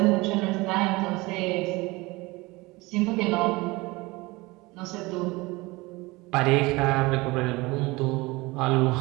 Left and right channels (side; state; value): left; quieter; 22.6 dB